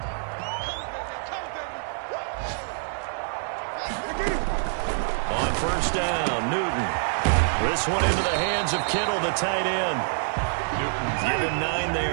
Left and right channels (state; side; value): silent; left; 61 dB below the other